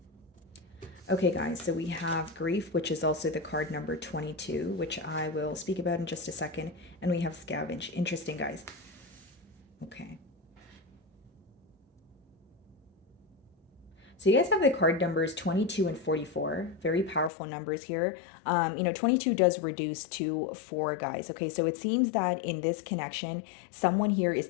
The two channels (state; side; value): drops out; right; at 17.3 s